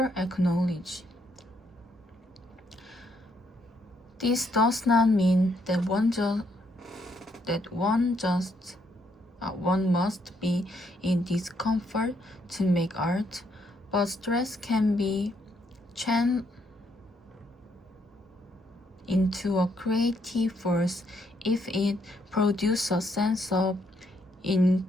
knowledge. This does not mean that one must be in discomfort to make art, but stress can be channeled into a creative force if it produces a sense of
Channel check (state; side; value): normal; both; correlation 0.73